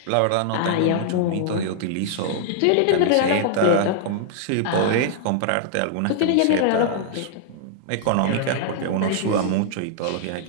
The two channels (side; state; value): both; different; correlation -0.01